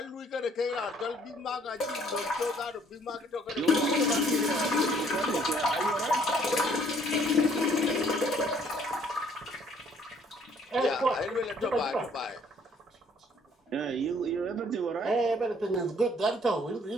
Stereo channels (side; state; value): both; normal; correlation 0.62